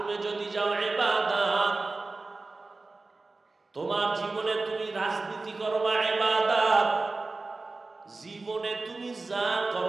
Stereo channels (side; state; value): left; quieter; 3.5 dB